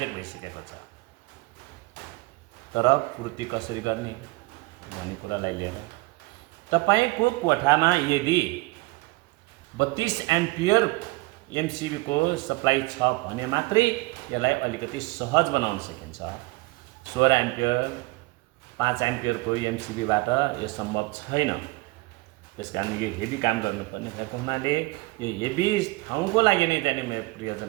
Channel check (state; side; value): quieter; left; 23.0 dB